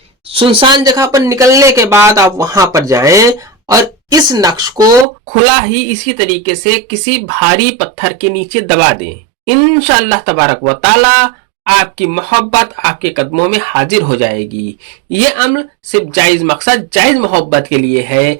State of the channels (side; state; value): left; drops out; at 5.1 s